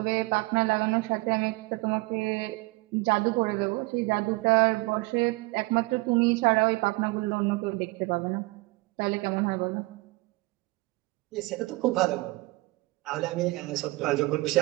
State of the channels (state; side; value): quieter; left; 23.3 dB